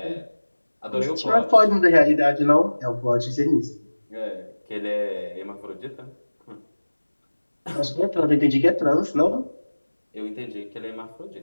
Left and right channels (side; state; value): both; inverted; correlation -1.00